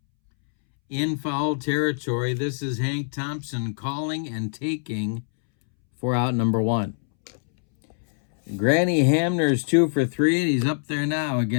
in foul territory. This is Hank Thompson calling and taking for out number 1. Granny Hamner's 2 for 3, and he's up there now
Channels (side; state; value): right; silent; 63 dB below the other